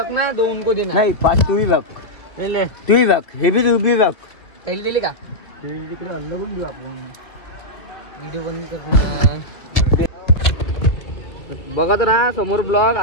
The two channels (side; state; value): right; late; 2.1 ms